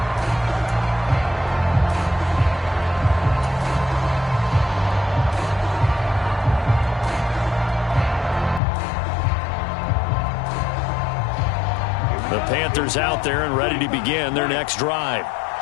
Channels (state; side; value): drops out; right; at 8.6 s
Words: The Panthers out there and ready to begin their next drive.